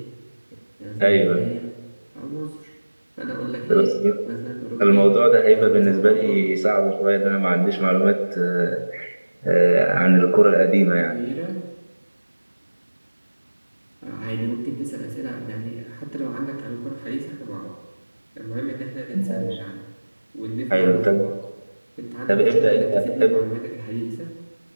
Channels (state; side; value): inverted; both; correlation -1.00